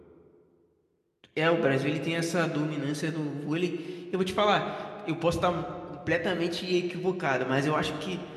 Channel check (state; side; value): identical; both; correlation 1.00